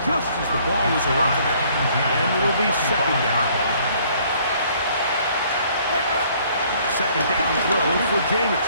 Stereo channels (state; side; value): inverted; both; correlation -0.60